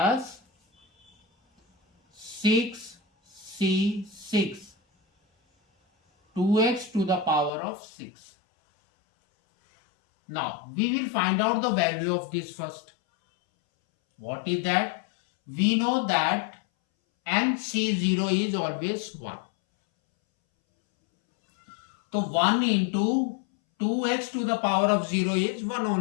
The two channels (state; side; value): drops out; right; at 7.5 s